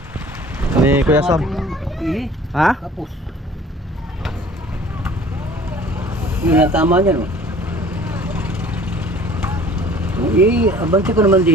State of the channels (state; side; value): normal; both; correlation 0.49